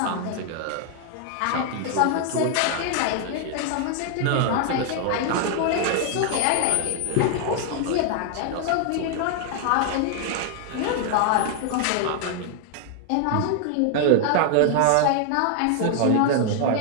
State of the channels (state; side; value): different; both; correlation 0.00